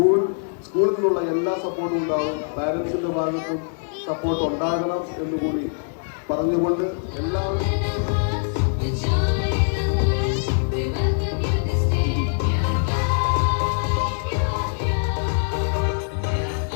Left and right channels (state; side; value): silent; right; digital silence